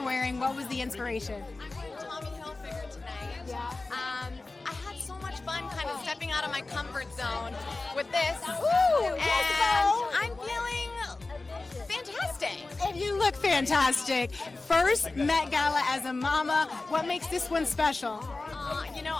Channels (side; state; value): right; quieter; 3.3 dB